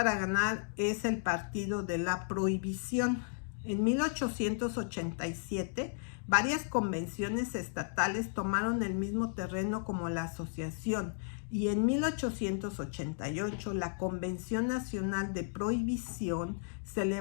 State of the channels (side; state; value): right; silent; digital silence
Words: ganar es el Partido de la Prohibición. En 1887, varias convenciones estatales tomaron el mismo terreno como la asociación, y en 1888 la Convención Nacional de Prohibición,